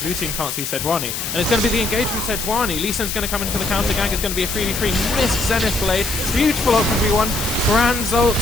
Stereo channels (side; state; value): left; noise; hiss, 4 dB below the sound